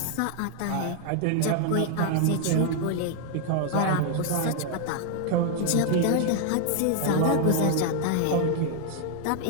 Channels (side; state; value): both; different; correlation 0.00